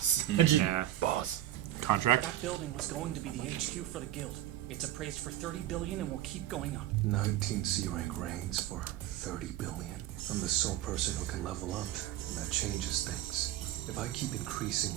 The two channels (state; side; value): quieter; left; 13.5 dB